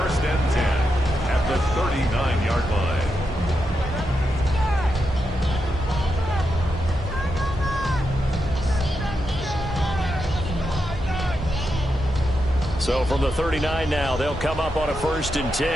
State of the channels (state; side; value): normal; both; correlation 0.85